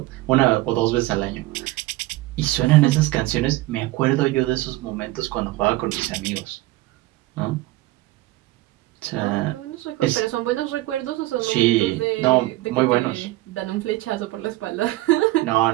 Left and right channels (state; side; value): quieter; left; 18.1 dB